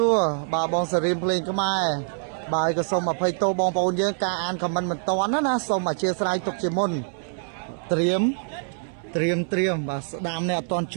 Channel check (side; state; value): left; silent; 62 dB below the other